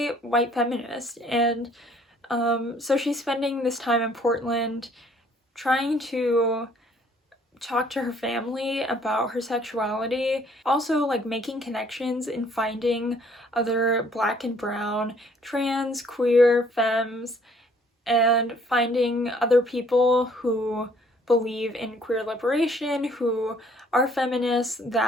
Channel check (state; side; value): normal; both; correlation 0.60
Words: white feminist, and so she's spending this time in Portland trying to talk to her family about her sexuality, also like making connections and finding other Black and brown, trans, queer, femmes, and finding other people who believe in queer liberation, who are feminists,